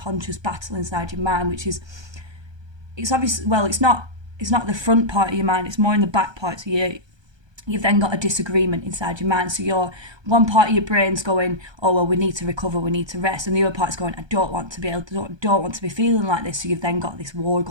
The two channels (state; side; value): late; left; 1.3 ms